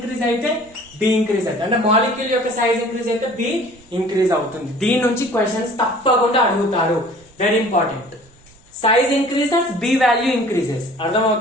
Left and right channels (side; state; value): right; noise; rumble, 27 dB below the sound